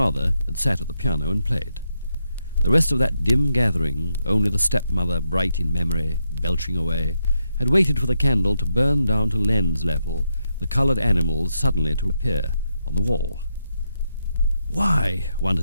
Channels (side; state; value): both; inverted; correlation -0.82